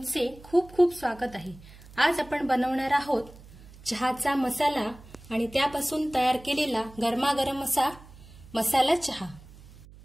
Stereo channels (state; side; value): noise; right; hum, 20 dB below the sound